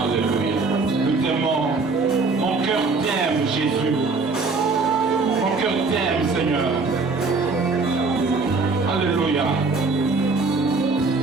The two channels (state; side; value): quieter; left; 4.0 dB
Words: Jésus, mon cœur t'aime, Seigneur. Alléluia.